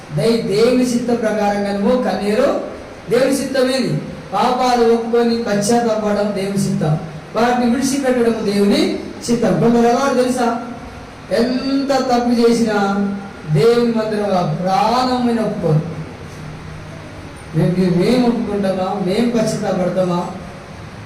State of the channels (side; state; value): both; identical; correlation 1.00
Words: దేవుని చిత్త ప్రకారంగా నువ్వు కన్నీరు. దేవుని చిత్తం ఏది? పాపాలు ఒప్పుకొని పశ్చాత్తాపడడం దేవుని చిత్తం, వాటిని విడిచిపెట్టడం దేవుని చిత్తం. కొందరు ఎవరు తెలుసా? ఎంత తప్పు చేసినా దేవుని మందిరంగా ప్రాణమైన ఒప్పుకోరు. మేము ఒప్పుకుంటామా, మేము పశ్చాత్తాపడతామా